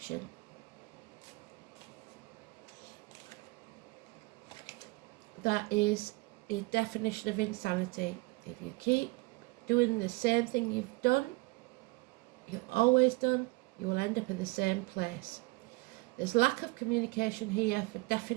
That is the definition of insanity. If you keep doing the same thing you've always done, you will end up in the same place. There's lack of communication here for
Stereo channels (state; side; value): quieter; left; 24.9 dB